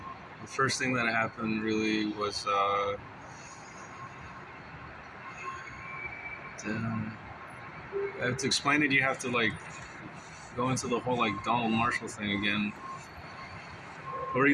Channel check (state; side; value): identical; both; correlation 1.00